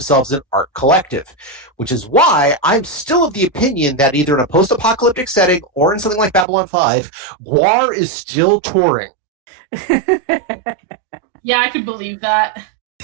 an art collective, which is why I'm still of the opinion that either in a post-apocalyptic setting or in something like Babylon 5, GWAR is still touring. Yeah, I could believe that.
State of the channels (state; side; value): drops out; left; at 6.5 s